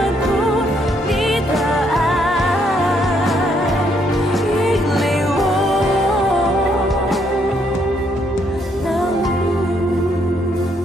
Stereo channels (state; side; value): normal; both; correlation 0.72